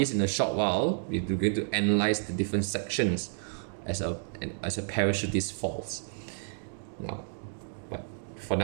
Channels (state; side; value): silent; left; digital silence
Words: in a short while. We're going to analyze the different sections as a parachutist falls. Now, but for